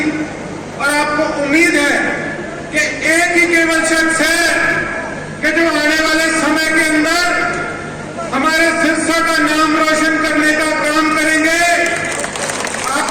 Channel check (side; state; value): both; identical; correlation 1.00